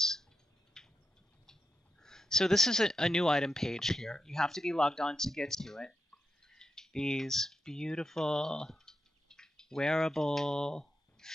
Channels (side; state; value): both; normal; correlation 0.86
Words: So this is a new item page here. You have to be logged on to get to it. These beautiful wearable